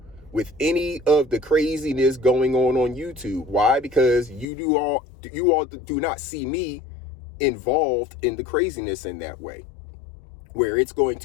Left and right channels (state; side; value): drops out; right; at 4.5 s